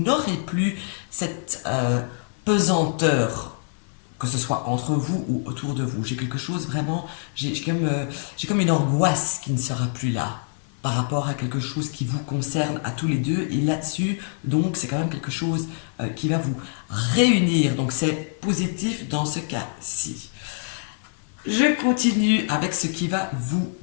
plus cette pesanteur, que ce soit entre vous ou autour de vous. J'ai quelque chose vraiment, j'ai comme une angoisse qui ne sera plus là par rapport à quelque chose qui vous concerne à tous les deux. Et là-dessus, donc, c'est quand même quelque chose qui va vous réunir. Donc, c'est positif dans ce cas-ci. Je continue avec ce qui va vous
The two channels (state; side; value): silent; right; 60 dB below the other